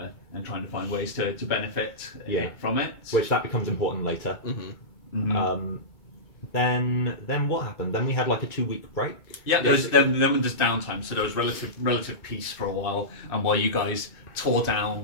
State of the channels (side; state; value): right; late; 2.2 ms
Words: trying to find ways to benefit from it. Which that becomes important later. Mm-hmm. Then what happened? Then we had a 2-week break. Yeah, there's downtime, so there was relative peace for a while, and while you guys tore